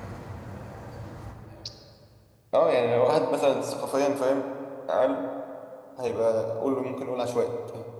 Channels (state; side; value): identical; both; correlation 1.00